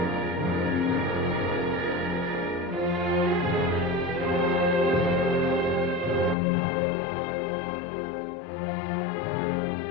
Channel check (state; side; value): drops out; right; at 6.4 s